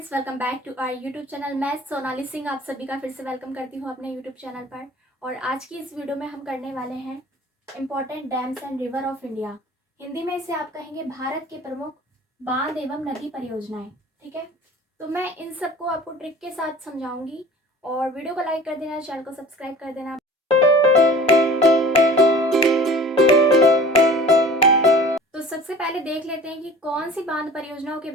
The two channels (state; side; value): normal; both; correlation 0.42